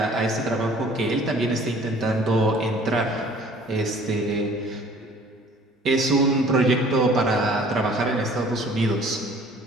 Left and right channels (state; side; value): normal; both; correlation 0.52